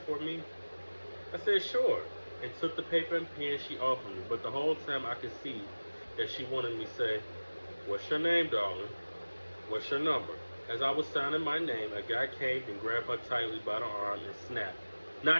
for me?" I said, "Sure," and took the paper and pen she offered me, but the whole time I could see that she wanted me to say, "What's your name, darling? What's your number?" As I was signing my name, a guy came and grabbed her tightly by the arm and snapped,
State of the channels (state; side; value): inverted; both; correlation -1.00